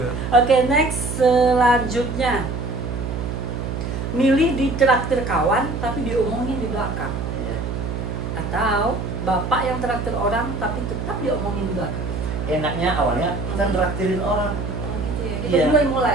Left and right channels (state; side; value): noise; right; hum, 4 dB below the sound